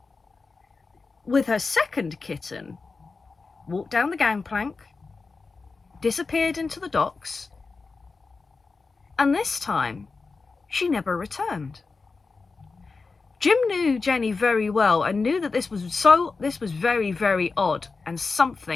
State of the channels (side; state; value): right; quieter; 4.2 dB